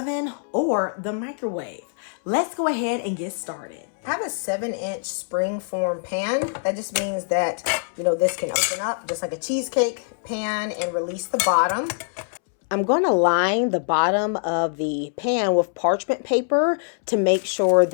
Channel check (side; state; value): right; silent; 63 dB below the other